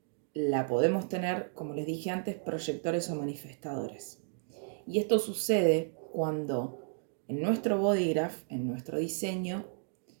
la podemos tener, como les dije antes, proyectores o manifestadores. Y esto sucede cuando en nuestro body graph, en nuestro diseño,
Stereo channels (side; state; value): left; silent; digital silence